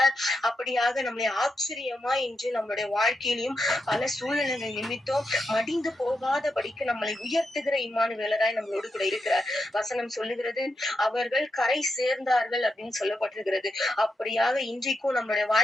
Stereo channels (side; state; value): both; normal; correlation 0.85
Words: அப்படியாக நம்மளை ஆச்சரியமாய் இன்று நம்மளுடைய வாழ்க்கையிலும் பல சூழ்நிலைகள் நிமித்தம் மடிந்து போகாதபடிக்கு நம்மளை உயர்த்துகிற இம்மானுவேலராய் நம்மளோடு கூட இருக்கிறார். வசனம் சொல்லுகிறது, அவர்கள் கரை சேர்ந்தார்கள் அப்படின்னு சொல்லப்பட்டிருக்கிறது. அப்படியாக இன்றைக்கும் நம்மளுடைய